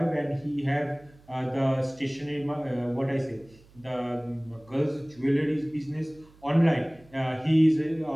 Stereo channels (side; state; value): right; noise; hum, 27 dB below the sound